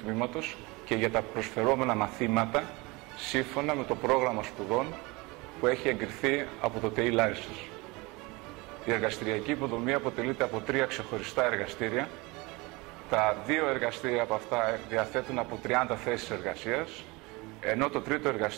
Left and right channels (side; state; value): left; quieter; 24.6 dB